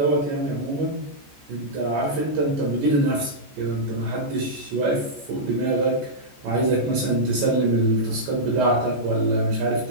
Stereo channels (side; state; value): left; late; 14 ms